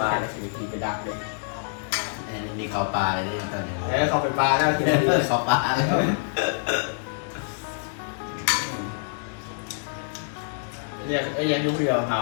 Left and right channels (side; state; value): right; silent; digital silence